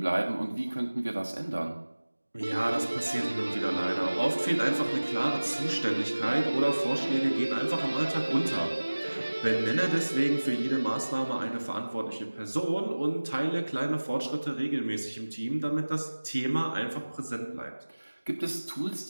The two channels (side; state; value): both; inverted; correlation -1.00